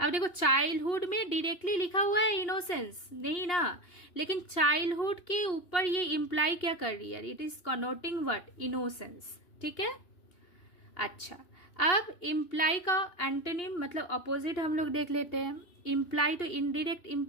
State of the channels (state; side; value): late; right; 2.8 ms